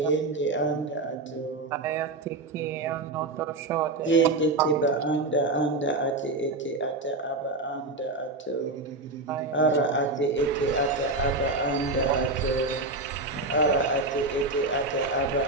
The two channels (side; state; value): left; quieter; 3.0 dB